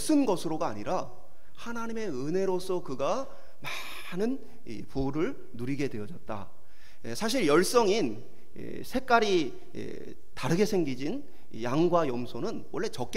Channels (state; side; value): identical; both; correlation 1.00